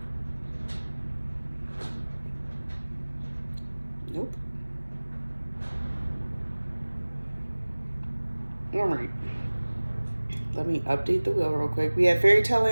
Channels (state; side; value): inverted; both; correlation -1.00